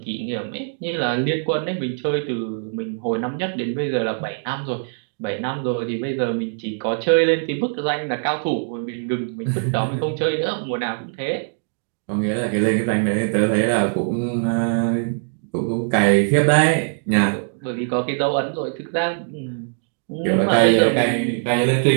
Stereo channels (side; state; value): left; silent; digital silence